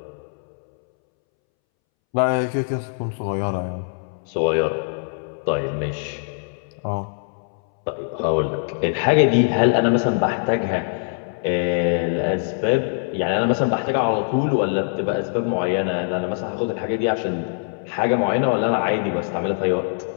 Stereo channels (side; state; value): right; silent; 63 dB below the other